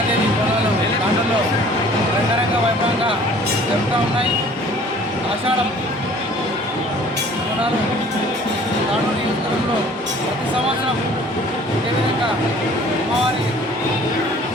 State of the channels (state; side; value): normal; both; correlation 0.51